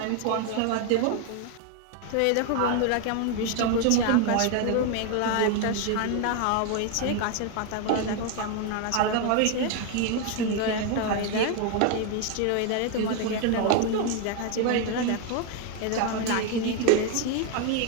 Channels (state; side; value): different; both; correlation 0.01